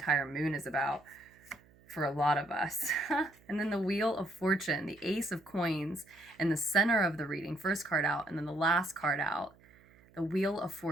moon is about for a lot of us. And then the Wheel of Fortune, the Ace of Coins in the center of the reading, first card out, and then the last card out, the Wheel of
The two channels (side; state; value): right; noise; hum, 28 dB below the sound